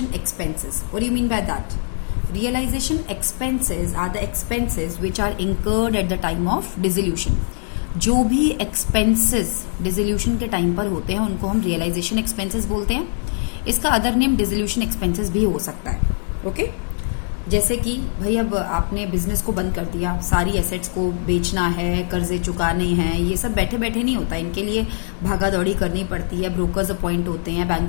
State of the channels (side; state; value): right; silent; digital silence